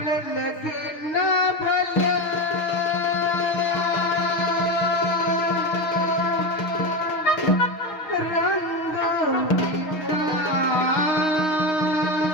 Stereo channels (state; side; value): late; right; 6.4 ms